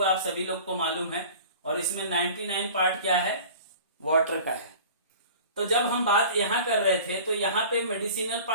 आप सभी लोग को मालूम है। और इसमें 99 पार्ट क्या है, वाटर का है। तो जब हम बात यहां कर रहे थे तो यहां पे मेडिसिनल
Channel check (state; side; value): inverted; both; correlation -0.42